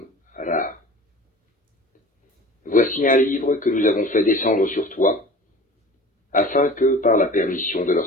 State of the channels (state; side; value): normal; both; correlation 0.41